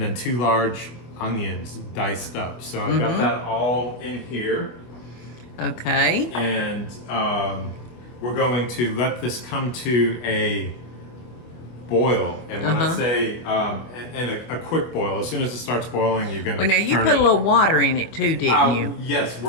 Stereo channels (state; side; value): late; right; 24 ms